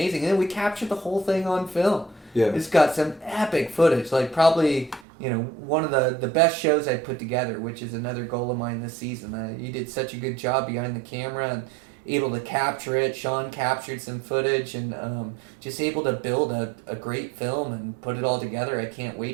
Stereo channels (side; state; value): left; drops out; at 5.1 s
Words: And then we captured the whole thing on film. Yeah. It's got some epic footage. Like, probably, you know, one of the best shows I put together, which is another goal of mine this season. You did such a good job behind the camera and able to capture it. Sean captured some footage and just able to build a great film and put it all together. I can't